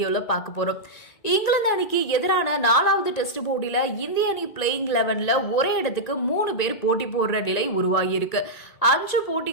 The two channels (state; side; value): late; right; 1.8 ms